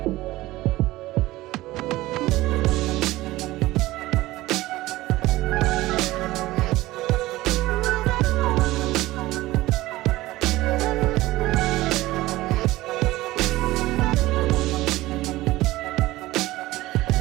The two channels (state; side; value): quieter; left; 17.8 dB